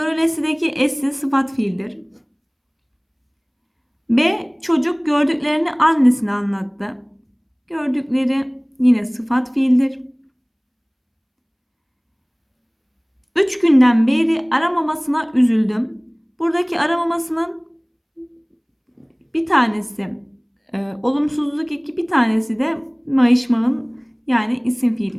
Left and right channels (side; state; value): both; identical; correlation 1.00